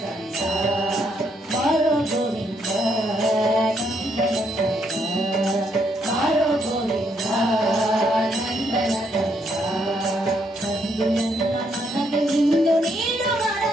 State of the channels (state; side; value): normal; both; correlation 0.74